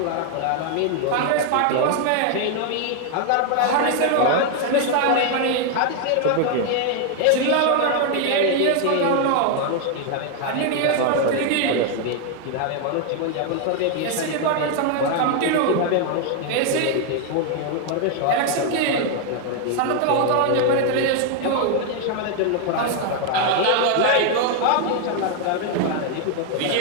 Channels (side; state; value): both; different; correlation 0.00